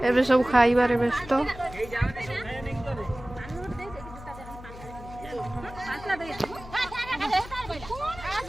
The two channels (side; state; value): left; noise; hum, 15 dB below the sound